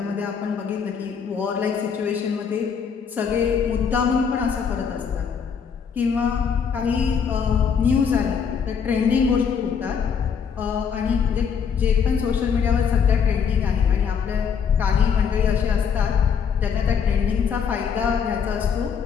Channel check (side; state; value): right; quieter; 6.8 dB